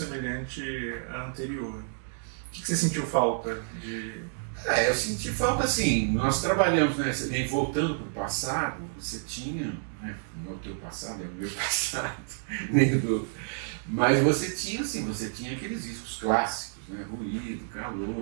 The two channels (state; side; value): silent; left; digital silence